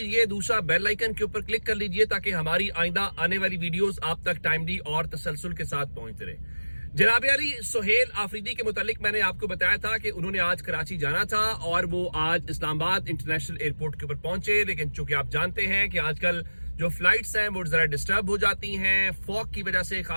दूसरा बेल आइकन के ऊपर क्लिक कर लीजिए ताकि हमारी आइंदा आने वाली वीडियोस आप तक टाइमली और तसलसल के साथ पहुंचते रहे। जनाब अली सुहेल आफरीदी के मुतालिक मैंने आपको बताया था कि उन्होंने आज कराची जाना था और वो आज इस्लामाबाद इंटरनेशनल एयरपोर्ट के ऊपर पहुंचे, लेकिन चूंकि आप जानते हैं कि आजकल जो फ्लाइट्स हैं वो जरा डिस्टर्ब हो जाती हैं फॉग की वजह से,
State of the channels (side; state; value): both; inverted; correlation -1.00